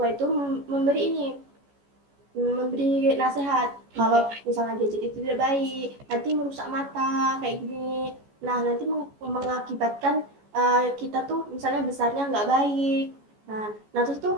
itu memberi nasihat kalau misalnya gadget itu tidak baik, nanti merusak mata kayak gini. Nah, nanti mengakibatkan kita tuh misalnya besarnya nggak baik. Nah,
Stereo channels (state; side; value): late; left; 14 ms